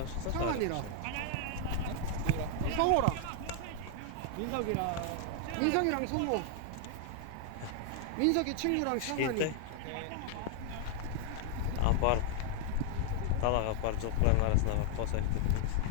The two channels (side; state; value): both; different; correlation 0.00